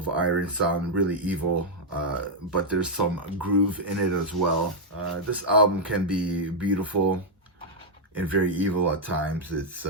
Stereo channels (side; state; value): both; normal; correlation -0.03